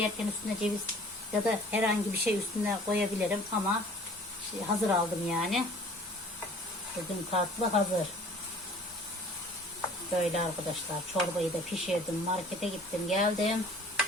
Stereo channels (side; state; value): both; normal; correlation 0.50